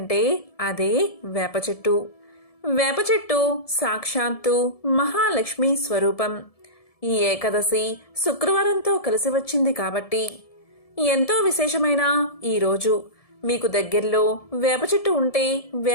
అదే వేప చెట్టు. వేప చెట్టు సాక్షాత్తు మహాలక్ష్మి స్వరూపం. ఈ ఏకాదశి శుక్రవారంతో కలిసి వచ్చింది కాబట్టి ఎంతో విశేషమైన ఈ రోజు మీకు దగ్గరలో వేప చెట్టు ఉంటే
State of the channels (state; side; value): late; right; 1.7 ms